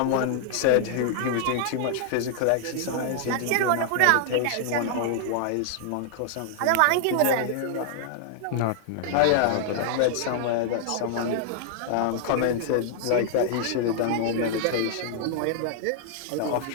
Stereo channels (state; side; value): different; both; correlation 0.00